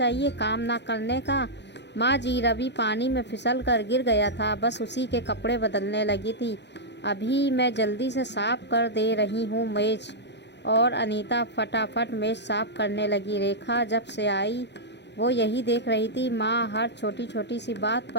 काम ना करने का। माँ जी, रवि पानी में फिसल कर गिर गया था, बस उसी के कपड़े बदलने लगी थी। अभी मैं जल्दी से साफ कर दे रही हूँ मेज़। और अनीता फटाफट मेज़ साफ करने लगी। रेखा जब से आई वो यही देख रही थी। माँ हर छोटी छोटी सी बात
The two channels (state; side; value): late; right; 0.50 ms